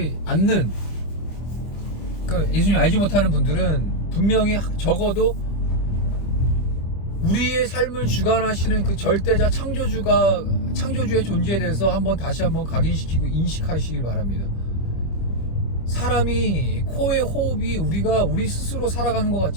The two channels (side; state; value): right; late; 25 ms